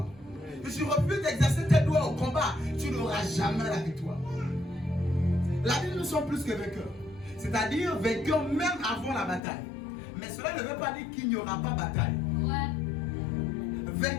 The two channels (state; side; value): drops out; right; at 9.4 s